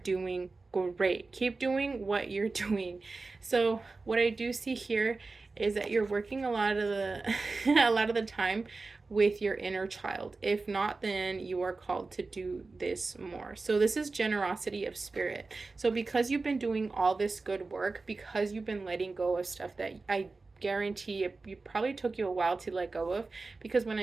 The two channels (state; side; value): quieter; left; 3.8 dB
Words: great. Keep doing what you're doing. So what I do see here is that you're working a lot of the time with your inner child. If not, then you are called to do this more. So this is generosity of spirit. So because you've been doing all this good work, because you've been letting go of stuff that I guarantee it probably took you a while to let go of, because when